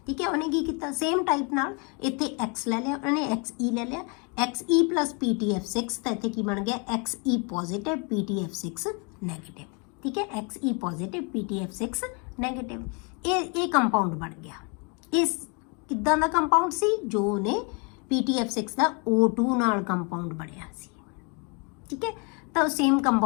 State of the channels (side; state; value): right; quieter; 33.7 dB